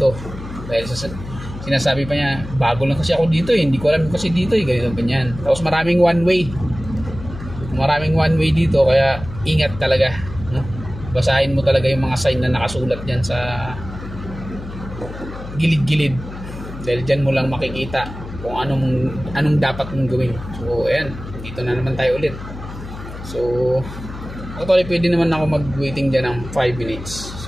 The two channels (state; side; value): noise; left; hum, 12 dB below the sound